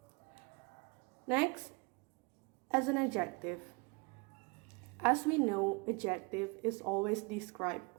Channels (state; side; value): quieter; left; 29.4 dB